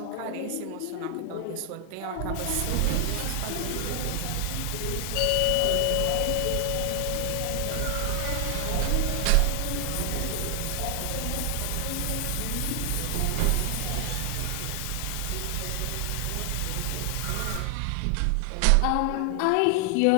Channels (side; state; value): both; different; correlation 0.00